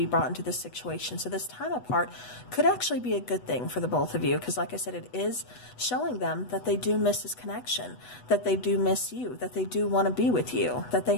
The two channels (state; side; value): late; right; 8.1 ms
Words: brought into this situation. So this time apart could actually be a good thing for the both of you, because like I said, it is showing them that they do miss this connection, that they do miss you, that they do want to be with you, that they